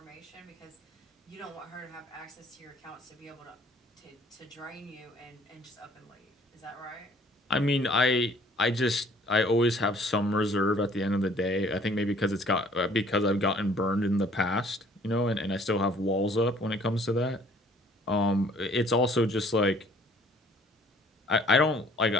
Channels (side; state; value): both; normal; correlation 0.57